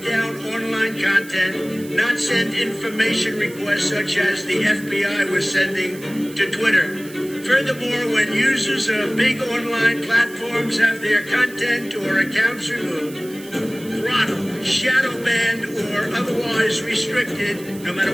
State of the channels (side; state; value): right; noise; hiss, 18 dB below the sound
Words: down online content, not send information requests such as the FBI was sending to Twitter. Furthermore, when users of big online platforms have their content or accounts removed, throttled, shadow banned, or otherwise restricted, no matter